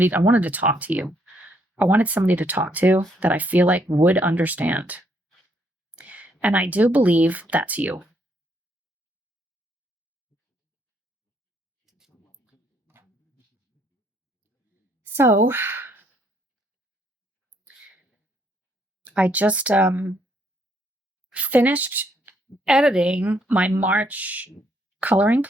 talk to you. I wanted somebody to talk to that I feel like would understand. And I do believe that's you. So I just finished editing my March coloring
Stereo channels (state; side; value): normal; both; correlation 0.71